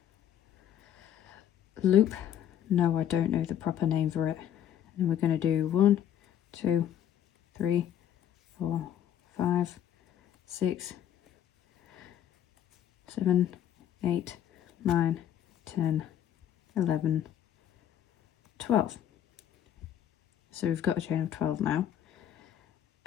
loop. No, I don't know the proper name for it. And we're going to do 1, 2, 3, 4, 5, 6, 7, 8, 9, 10, 11, 12. So we've got a chain of 12 now.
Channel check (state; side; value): quieter; right; 10.4 dB